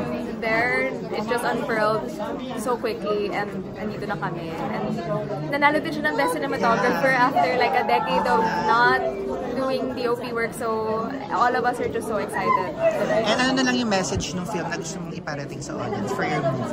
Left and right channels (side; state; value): both; identical; correlation 1.00